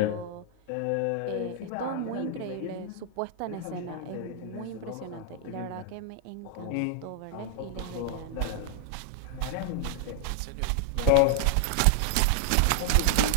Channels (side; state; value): both; different; correlation 0.00